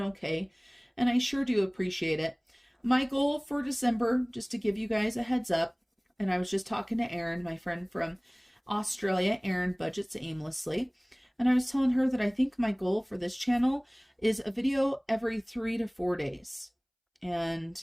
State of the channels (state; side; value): identical; both; correlation 1.00